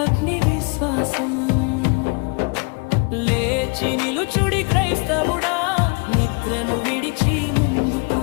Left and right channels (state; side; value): quieter; right; 32.1 dB